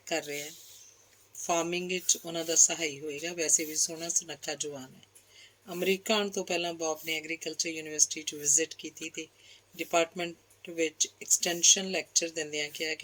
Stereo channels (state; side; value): identical; both; correlation 1.00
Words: ਕਰ ਰਿਹਾ ਹੈ, ਫਾਰਮਿੰਗ ਵਿੱਚ ਉਹਨਾਂ ਦਾ ਸਹਾਈ ਹੋਏਗਾ। ਵੈਸੇ ਵੀ ਸੋਹਣਾ ਸੁਨੱਖਾ ਜਵਾਨ ਹੈ। ਅਮਰੀਕਾ ਆਉਣ ਤੋਂ ਪਹਿਲਾਂ ਬੌਬ ਨੇ ਐਗਰੀਕਲਚਰ ਯੂਨੀਵਰਸਿਟੀ 'ਚ ਵਿਜ਼ਿਟ ਕੀਤੀ ਅਤੇ ਡਿਪਾਰਟਮੈਂਟ ਵਿੱਚ ਐਕਸਟੈਂਸ਼ਨ ਲੈਕਚਰ ਦਿੰਦਿਆਂ ਕਿਹਾ